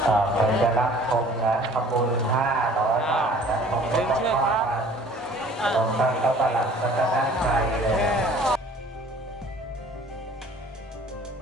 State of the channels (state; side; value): normal; both; correlation 0.51